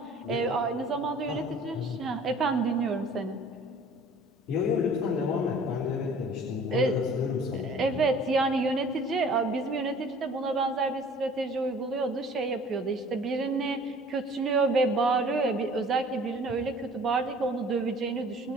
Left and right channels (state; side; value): normal; both; correlation 0.50